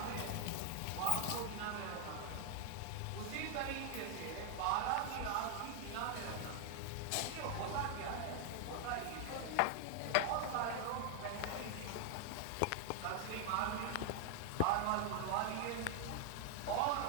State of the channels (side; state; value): both; different; correlation 0.00